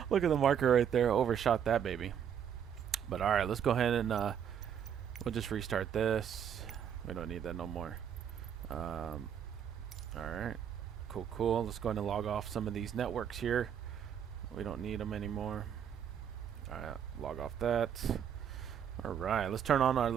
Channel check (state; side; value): quieter; left; 8.6 dB